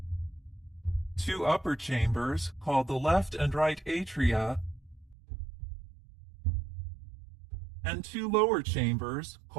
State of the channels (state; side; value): drops out; left; at 5.2 s